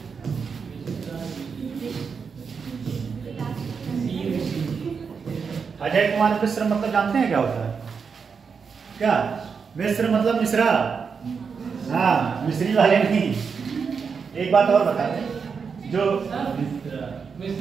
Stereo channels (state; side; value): quieter; left; 5.8 dB